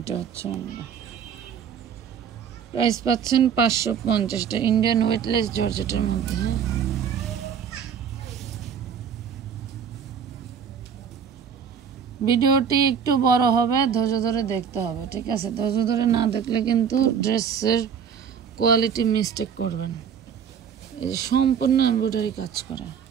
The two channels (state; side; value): quieter; left; 7.6 dB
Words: হচ্ছে অন্য। প্রাইস পাচ্ছেন 550। ইন্ডিয়ান ওয়েটলেস জর্জেটের মধ্যে। হ্যাঁ, ভিডিওটি একটু বড় হবে, ধৈর্য ধরে দেখতে হবে, ঠিক আছে? ধৈর্য ধরে না দেখলে কিন্তু ড্রেসের কোয়ালিটি মিস্টেক করবেন। এই যে সম্পূর্ণ এমব্রয়ডারি কাজ করা।